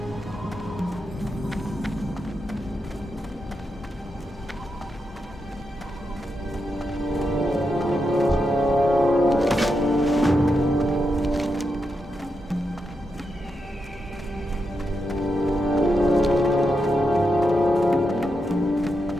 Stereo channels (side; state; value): both; normal; correlation 0.85